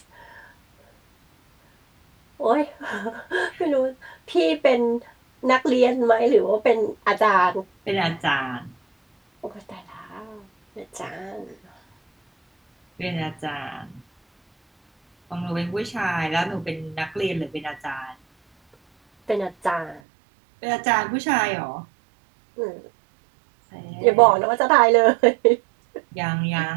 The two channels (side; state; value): left; drops out; at 20.0 s